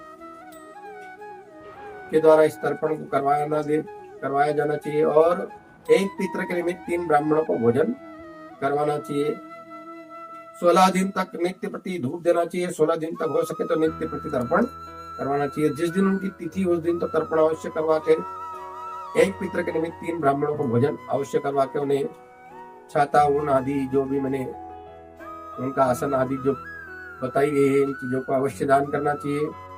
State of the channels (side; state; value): both; identical; correlation 1.00